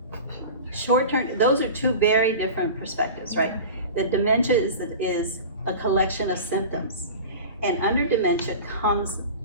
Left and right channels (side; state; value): both; inverted; correlation -0.34